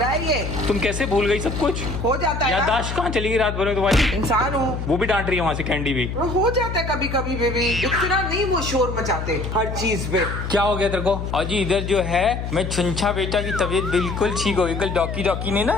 है ये? तुम कैसे भूल गई सब कुछ? हो जाता है ना? याददाश्त कहाँ चली गई रात भर में तुम्हारी? इंसान हूँ। वो भी डांट रही है वहाँ से, कैंडी भी। हो जाता है कभी कभी बेबी, इतना नहीं वो शोर मचाते हर चीज पे। क्या हो गया तेरे को? और जी इधर जो है, मैं छुंछा बेटा की तबीयत बिल्कुल ठीक हो गई। कल डॉकी ने ना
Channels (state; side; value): noise; left; hum, 5 dB below the sound